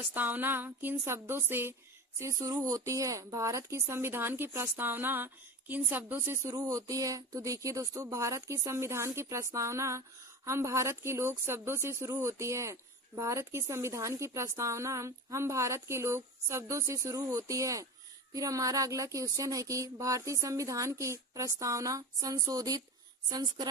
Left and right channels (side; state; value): both; normal; correlation 0.29